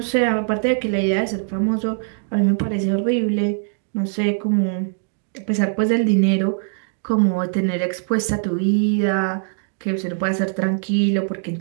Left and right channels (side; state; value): left; silent; 65 dB below the other